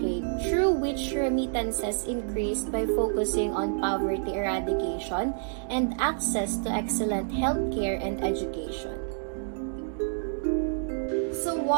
through which remittances increased by focusing on poverty eradication and access to excellent healthcare and education. So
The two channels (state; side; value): silent; left; digital silence